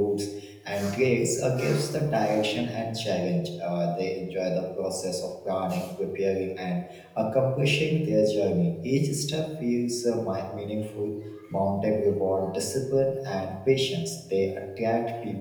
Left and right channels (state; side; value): identical; both; correlation 1.00